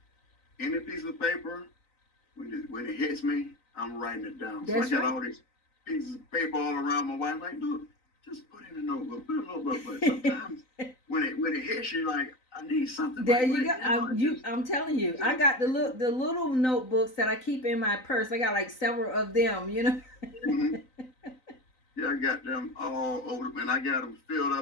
any piece of paper, when it hits me, I'm writing it down. That's so I got right. all these pieces of paper all around my wife. Like, look, just put it in a notebook. Put it in a notebook. But sometimes when it hits you, like, I need something. There like, you go. I'm telling you, I got the little notebooks that I keep in my purse. I got like several of them. Mm-hmm. Yeah, I got them all over, and I got them filled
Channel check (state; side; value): late; right; 3.9 ms